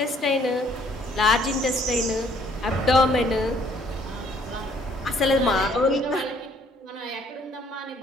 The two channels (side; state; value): both; normal; correlation 0.62